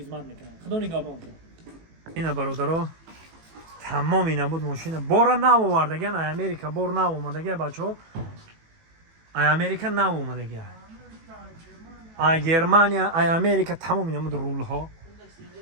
мекунанд худо нигоҳбон кунад. ина бародаро тамоми набуд мошина бора нав овардаган ай Америка бор нав омадага бачаҳо ай Америка нав омадага ай Германия ай Америка тамоми намуд рулҳо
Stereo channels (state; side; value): late; left; 18 ms